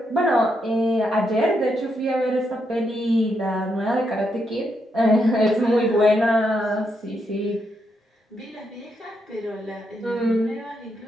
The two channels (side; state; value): both; normal; correlation 0.80